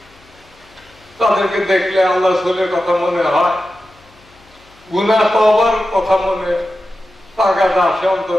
তাদেরকে দেখলে আল্লাহ রাসূলের কথা মনে হয়, গুনাহ তওবার কথা মনে তাগাদ আসে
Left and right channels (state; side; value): noise; left; hum, 30 dB below the sound